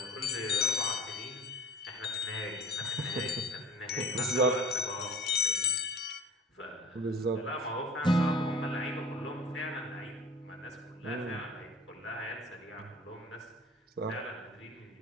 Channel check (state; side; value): normal; both; correlation 0.42